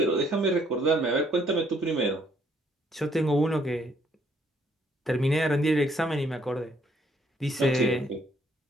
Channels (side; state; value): both; normal; correlation 0.67